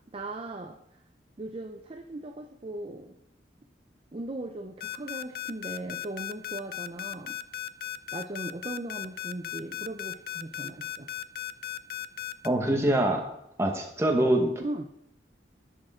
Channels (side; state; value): both; normal; correlation 0.59